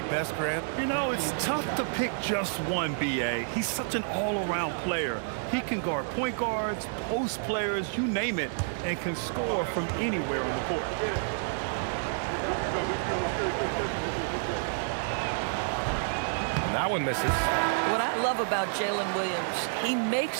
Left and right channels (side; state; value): left; silent; digital silence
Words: best, Grant? You know, it's tough to pick just one, B.A. He's such an all-around player. He can guard point guards, post players, you name it, and can score from anywhere on the court. And that one misses. What I love about Jalen Williams, he